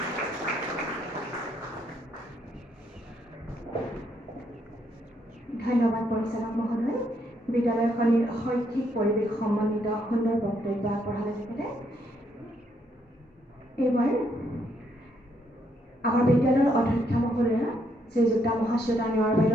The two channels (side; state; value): both; normal; correlation 0.73